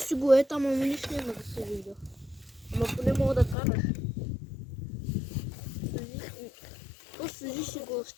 го е там, ама нищо няма да се вижда. Ама поне мога да караш. Просто сложи си го с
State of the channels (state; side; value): drops out; right; at 3.6 s